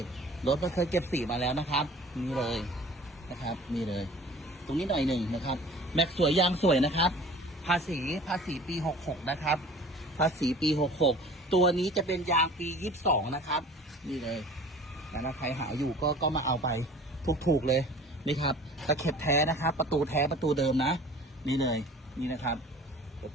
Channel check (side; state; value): both; normal; correlation 0.45